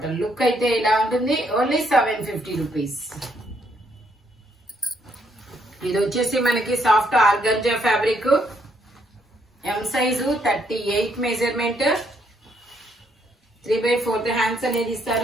లుక్ అయితే ఇలా ఉంటుంది. Only 750 rupees. ఇది వచ్చేసి మనకి soft organza fabric. M size 38 measurement. 3/4 hands అనేది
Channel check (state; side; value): normal; both; correlation 0.72